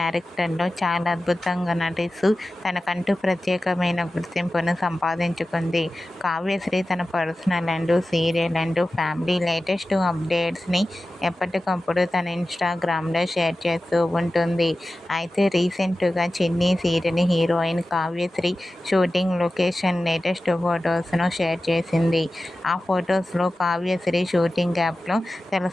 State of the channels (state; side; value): normal; both; correlation 0.95